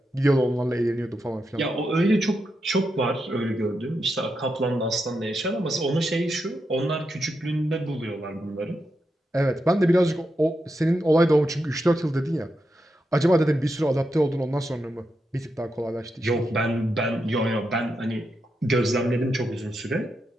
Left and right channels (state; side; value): normal; both; correlation 0.86